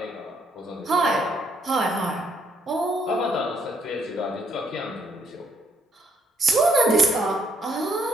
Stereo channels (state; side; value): normal; both; correlation 0.70